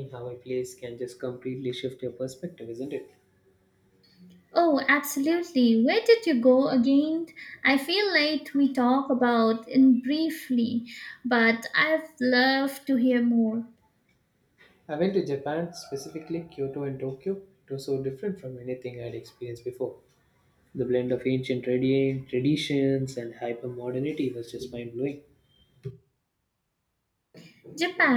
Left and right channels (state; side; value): identical; both; correlation 1.00